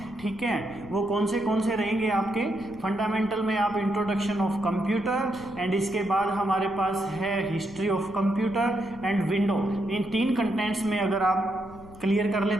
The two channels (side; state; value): left; noise; rumble, 20 dB below the sound